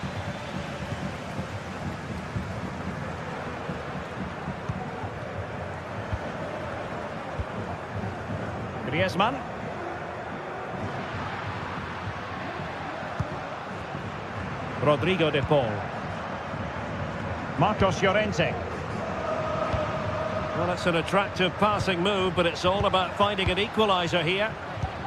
Griezmann. Rodrigo de Paul. Marcos Llorente. Well, it's an attractive passing move, but it's all about finding an equaliser here.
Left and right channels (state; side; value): identical; both; correlation 1.00